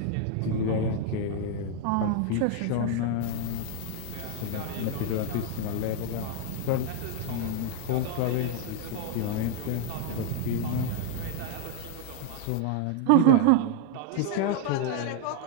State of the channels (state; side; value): different; both; correlation 0.00